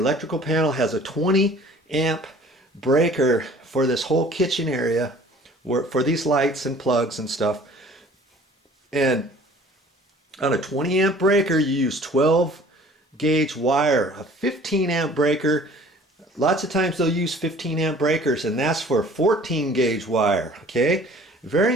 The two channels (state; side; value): normal; both; correlation 0.50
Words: panel has a 20 amp breaker for this whole kitchen area, for these lights and plugs and stuff. And on a 20 amp breaker, you use 12 gauge wire. A 15 amp breaker, lots of times they'll use 15 amp breakers, and that's for 14 gauge wire. Okay, very